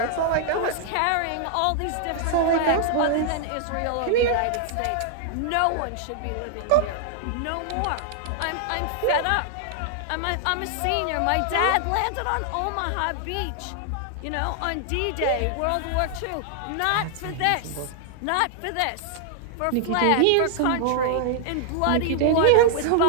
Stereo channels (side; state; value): both; different; correlation -0.01